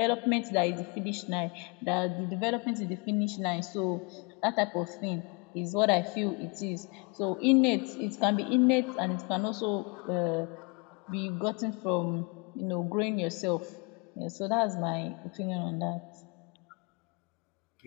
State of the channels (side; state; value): right; quieter; 30.8 dB